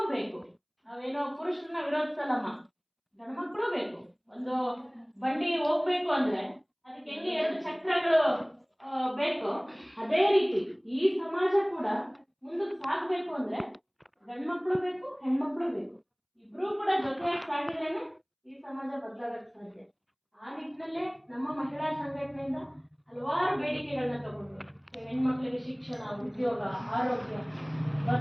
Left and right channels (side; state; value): both; identical; correlation 1.00